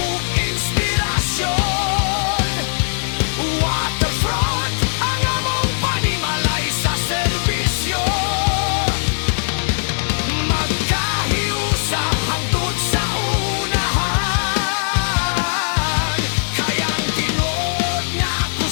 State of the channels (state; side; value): silent; right; digital silence